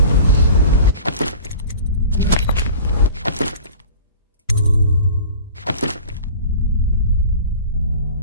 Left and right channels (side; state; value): both; inverted; correlation -0.40